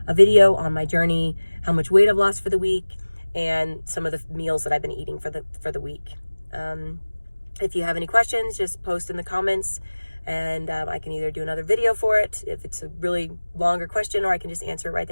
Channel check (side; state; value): both; inverted; correlation -1.00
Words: a video on my journey, how much weight I've lost for the week, and some of the meals that I've been eating for the week. If you have any questions, just post in the comments, and I can either do another video for it if it's a really longer question, or I can just answer it right